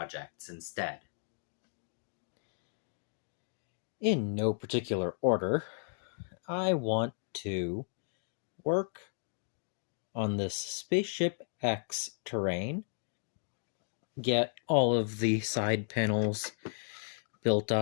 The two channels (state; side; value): silent; right; digital silence